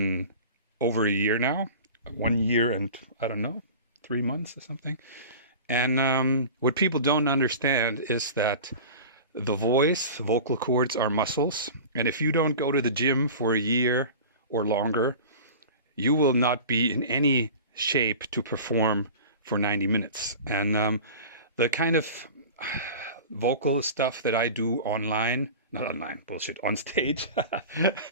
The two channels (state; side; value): inverted; both; correlation -0.36